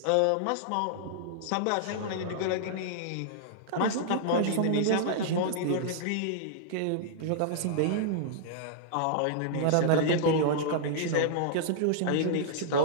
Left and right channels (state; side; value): different; both; correlation -0.01